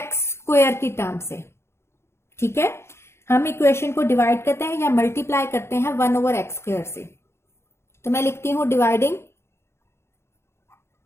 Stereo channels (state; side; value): late; right; 0.12 ms